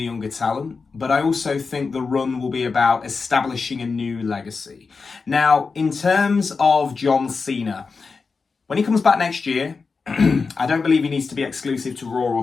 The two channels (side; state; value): right; quieter; 4.7 dB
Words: younger talent, but I also think the run will be about establishing a new legacy. Now, in terms of John Cena, when he comes back next year, I don't believe he needs to be exclusive to Raw or